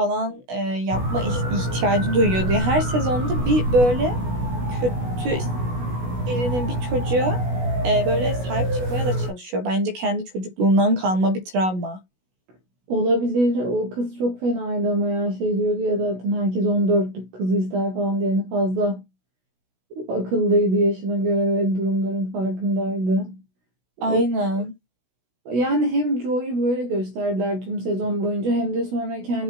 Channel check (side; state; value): left; late; 16 ms